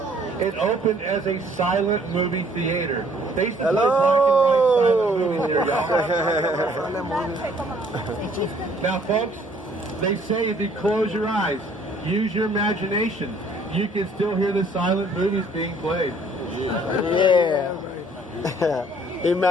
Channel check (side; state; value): both; normal; correlation 0.60